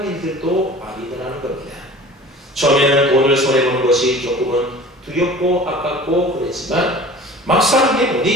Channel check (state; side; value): normal; both; correlation 0.42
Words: 일들도 아니더라는 겁니다. 처음에는 돈을 손해보는 것이 조금은 두렵고 아깝고 그랬지만 막상